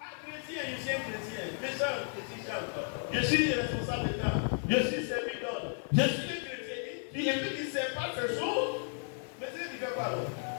chrétien, je suis un chrétien. Méchant, je suis chanteur. Je suis responsable d'État. Je suis servi d'ordre. Je suis un chrétien. Et puis tu ne sais pas ces choses. Mais c'est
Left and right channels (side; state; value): right; silent; 55 dB below the other